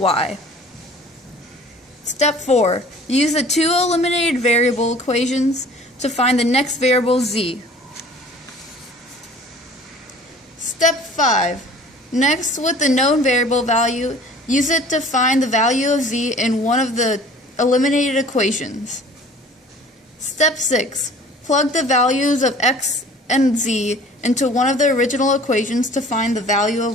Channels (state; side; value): normal; both; correlation 0.48